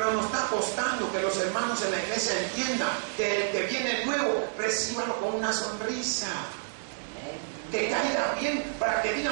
nos está costando que los hermanos en la iglesia entiendan que el que viene nuevo, recíbalo con una sonrisa. Que caiga bien, para que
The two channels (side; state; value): left; silent; digital silence